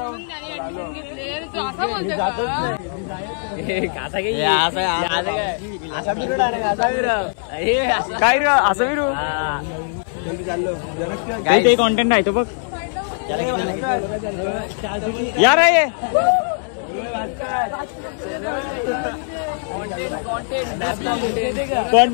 काय रे असं विरू ते कॉन्टेंट आहे तो बघ यार आहे.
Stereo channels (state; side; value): silent; right; digital silence